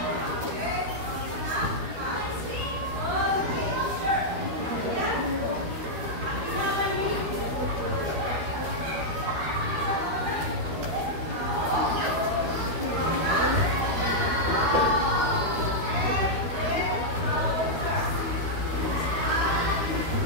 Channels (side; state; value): left; late; 13 ms